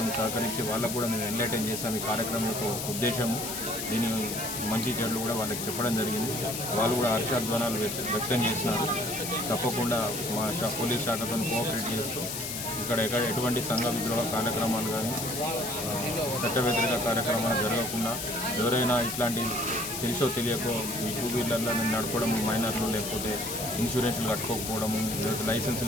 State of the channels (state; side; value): noise; left; hiss, 5 dB below the sound